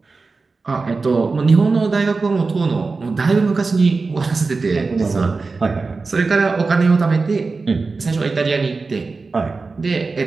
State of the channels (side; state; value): left; quieter; 4.1 dB